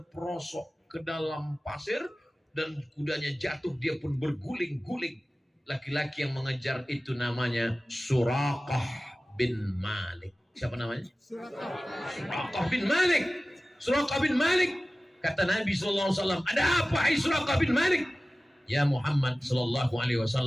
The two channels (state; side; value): normal; both; correlation 0.96